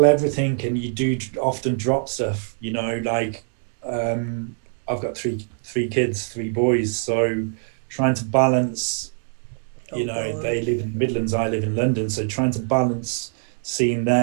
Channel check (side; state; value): left; silent; 63 dB below the other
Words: everything, and you do often drop stuff. Like um, I've got three kids, three boys, so trying to balance. Oh God. They live in the Midlands, I live in London, so trying to balance seeing